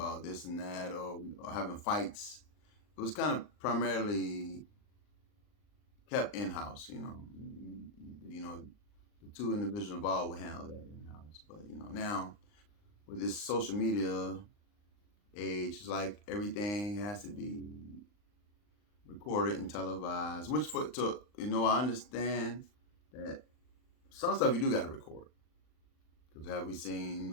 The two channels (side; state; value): right; late; 39 ms